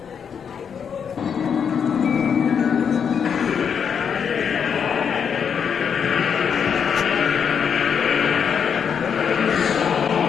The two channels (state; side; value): quieter; right; 7.1 dB